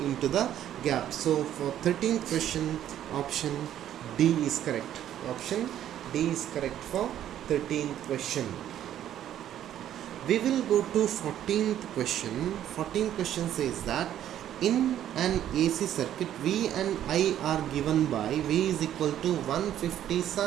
the gap. So for 13th question, option D is correct. Option D is correct for 13th question. We will go to 14th question. 14th question says that in an AC circuit, V and I are given by V is equal to 150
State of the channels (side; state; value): left; quieter; 11.2 dB